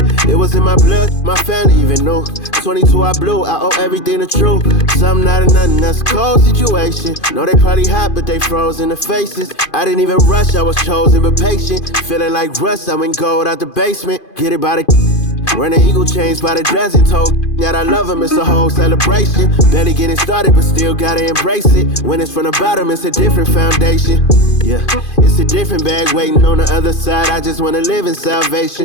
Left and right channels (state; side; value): late; right; 2.5 ms